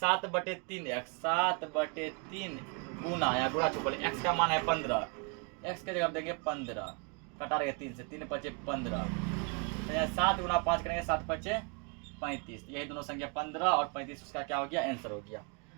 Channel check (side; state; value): left; quieter; 34.2 dB